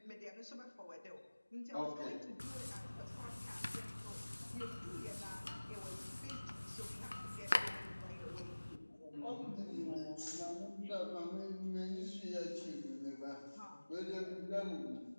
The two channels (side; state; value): both; inverted; correlation -1.00